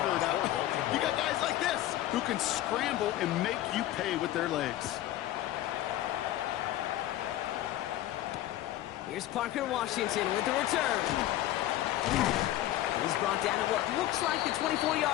it up, you got guys like this who can scramble and make you pay with their legs. Here's Parker Washington with the return. He's brought down at what looks like the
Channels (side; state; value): right; quieter; 14.1 dB